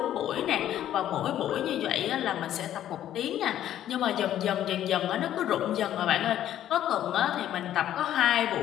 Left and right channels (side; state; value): right; quieter; 11.7 dB